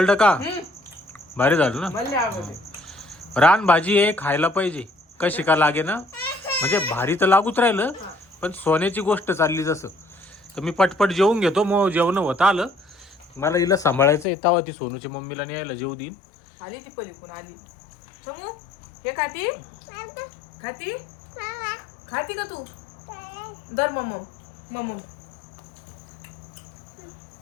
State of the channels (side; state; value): right; drops out; at 14.2 s